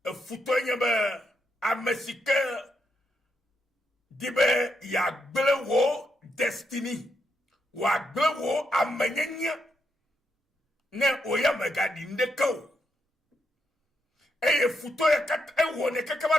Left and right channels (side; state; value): both; normal; correlation 0.80